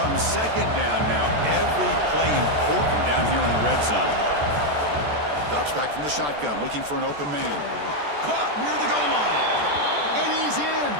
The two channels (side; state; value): left; late; 14 ms